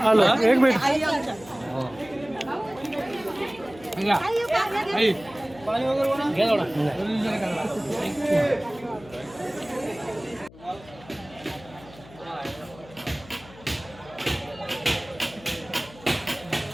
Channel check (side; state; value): left; noise; hum, 21 dB below the sound